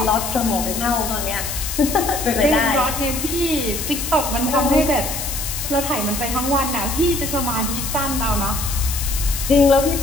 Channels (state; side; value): noise; left; hiss, 5 dB below the sound